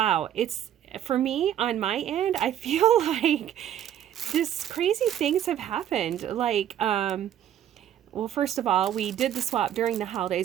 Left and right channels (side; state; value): left; quieter; 10.7 dB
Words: it's for me on my end, I feel like this crazy things have happened. Well, first of all, we did the swap during the